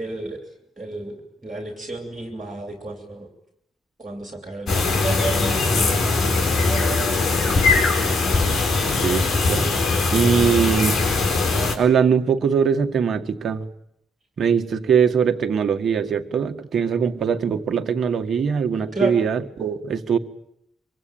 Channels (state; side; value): normal; both; correlation 0.70